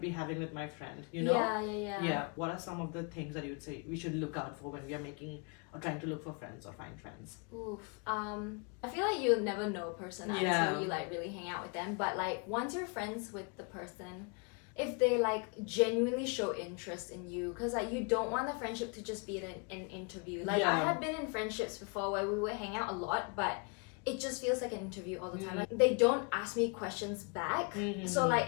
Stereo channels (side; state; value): right; quieter; 34.5 dB